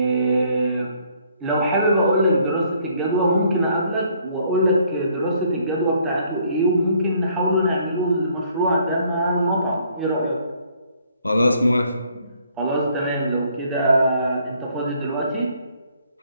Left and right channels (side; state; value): both; inverted; correlation -0.64